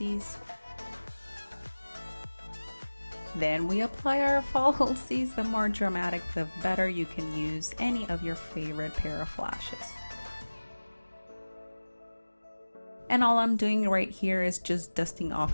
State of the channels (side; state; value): both; inverted; correlation -1.00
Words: Then we apply our falsies. The more dramatic, the better. You can use any of your favorite pair of lashes. And all I'm doing right here is just dusting